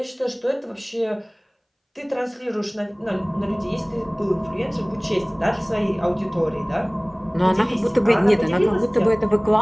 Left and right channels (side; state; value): both; identical; correlation 1.00